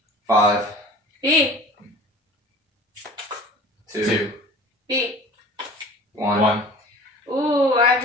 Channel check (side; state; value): both; normal; correlation 0.43